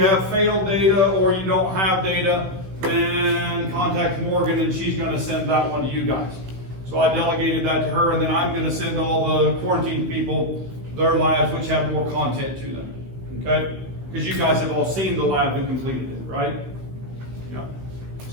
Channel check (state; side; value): late; left; 16 ms